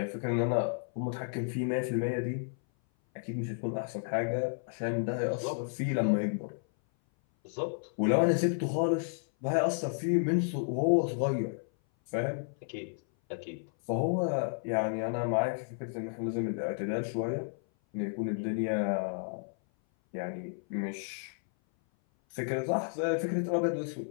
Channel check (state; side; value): silent; right; 56 dB below the other